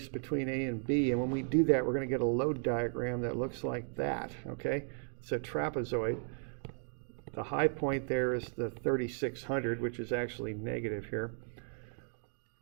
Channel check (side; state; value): left; silent; 54 dB below the other